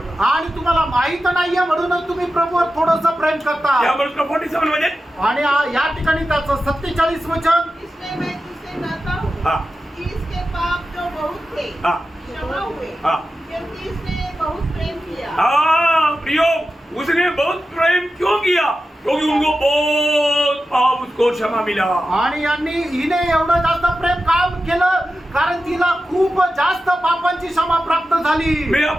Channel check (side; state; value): both; normal; correlation 0.92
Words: आणि तुम्हाला माहित नाहीये म्हणूनच तुम्ही प्रभूवर थोडंसं प्रेम करता. यावर उसका 47 मध्ये आणि या ठिकाणी त्याचं 47 वचन. इसलिए मैं तुझसे कहता हूँ हाँ. कि इसके पाप जो बहुत थे हाँ. क्षमा हुए, हाँ. क्योंकि इसने बहुत प्रेम किया. हाँ प्रियो, उसने बहुत प्रेम क्यों किया? क्योंकि उनको बहुत पाप उसको क्षमा मिला। आणि हिने एवढं जास्त प्रेम काम केलं कारण तिला खूप जास्त पापांची क्षमा प्राप्त झाली. मैं